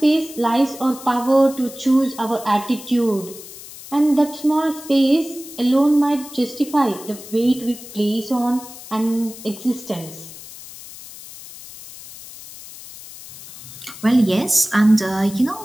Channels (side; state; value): left; noise; hiss, 16 dB below the sound